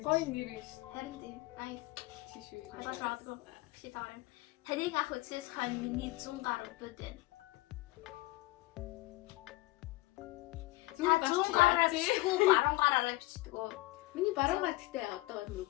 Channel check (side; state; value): right; quieter; 19.7 dB